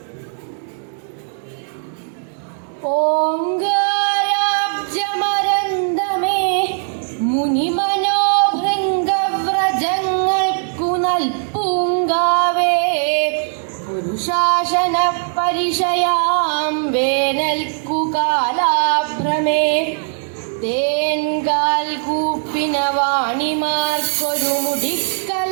ഓങ്കാരാബ്ജമരന്തമേ മുനിമനോഭൃംഗവ്രജങ്ങൾക്കു നൽപൂങ്കാവേ. പുരുഷാസന പരിശയാം വേനൽക്കു കാലാഭ്രമേ. തേൻകാൽ കൂപ്പിന വാണിമാർക്കൊരു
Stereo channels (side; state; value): left; silent; 67 dB below the other